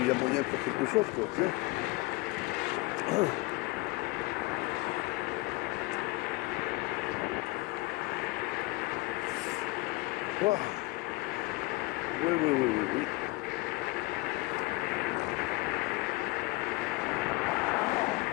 y a moyen de faire quelque chose, quoi, tu sais. Oh. Oui, oui, oui, oui, oui.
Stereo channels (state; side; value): quieter; right; 22.7 dB